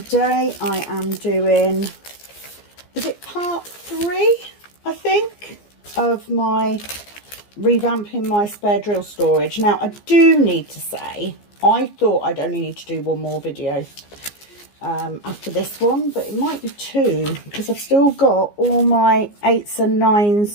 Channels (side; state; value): right; late; 15 ms